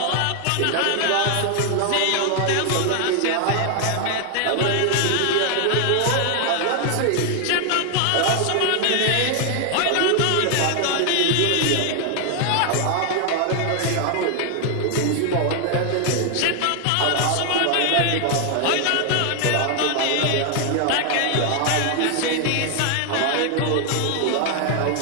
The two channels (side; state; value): both; different; correlation 0.00